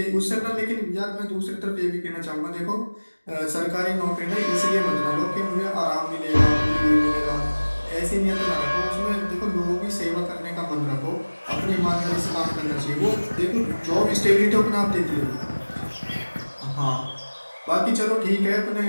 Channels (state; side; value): inverted; both; correlation -1.00